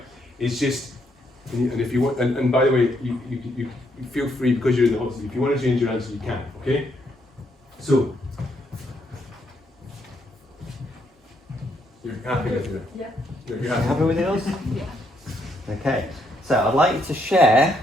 is just. And if you want, and by the way, you feel free, because you're in the hot seat. If you want to change your answer, you can. Okay. So. You're happy with it? Yeah. You're Happy happy. with yours? Yeah. Okay. So I'd like you to share.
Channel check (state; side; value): normal; both; correlation 0.75